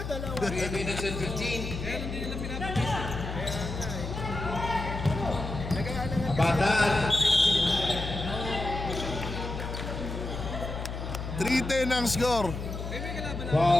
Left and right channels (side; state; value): left; noise; hum, 6 dB below the sound